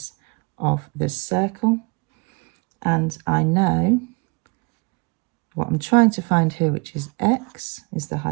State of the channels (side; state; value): left; quieter; 30.3 dB